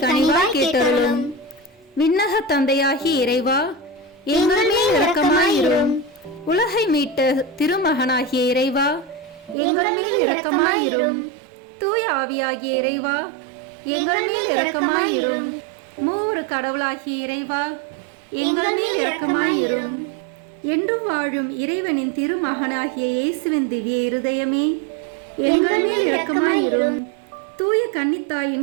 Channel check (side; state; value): left; drops out; at 9.6 s